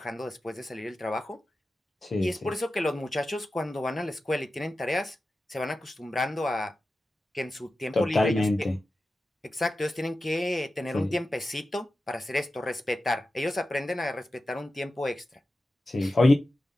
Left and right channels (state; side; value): normal; both; correlation 0.93